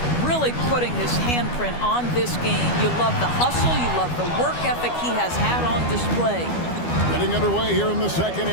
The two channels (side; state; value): right; late; 12 ms